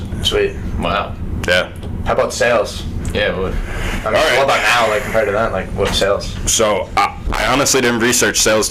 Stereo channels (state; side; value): identical; both; correlation 1.00